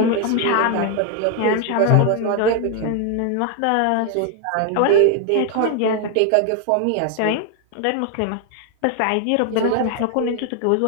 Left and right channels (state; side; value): different; both; correlation 0.00